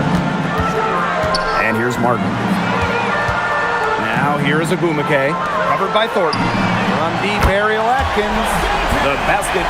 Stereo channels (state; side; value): identical; both; correlation 1.00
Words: And here's Martin. Now here is Agumake, covered by Thornton. From deep aerial Atkins. The basket